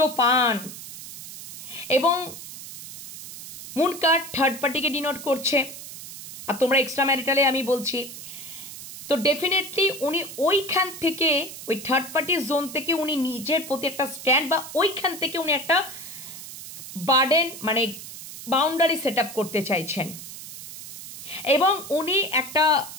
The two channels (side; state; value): right; noise; hiss, 12 dB below the sound